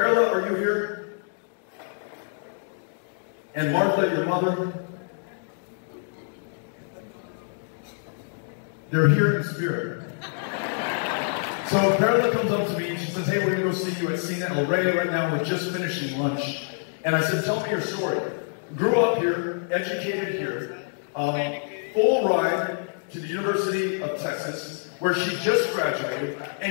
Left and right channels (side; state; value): right; silent; digital silence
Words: are you here? And Martha, your mother? They're here in spirit. So Perla comes up to me and she says, "Hey, we're going to go see you at Cine El Rey right now. We're just finishing lunch." And I said, "Tell me your story." Grew up here, educated here, full ride to the University of Texas, where she just graduated,